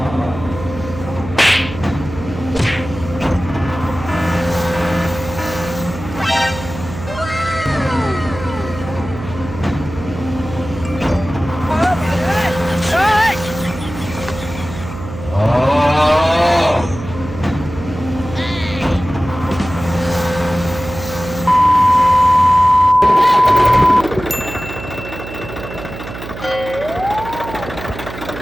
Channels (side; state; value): right; noise; hum, 11 dB below the sound